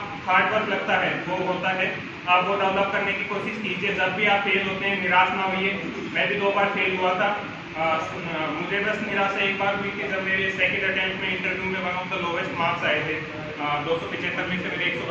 हार्ड वर्क लगता है वो होता है, आप वो डेवलप करने की कोशिश कीजिए। जब भी आप फेल होते हैं निराश ना होइए। मैं भी 2 बार फेल हुआ था। मुझे बस निराशा एक बार हुई थी जब मेरे सेकंड अटेम्प्ट में इंटरव्यू में one of the lowest marks आए थे। 275 में से मेरे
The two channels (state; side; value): identical; both; correlation 1.00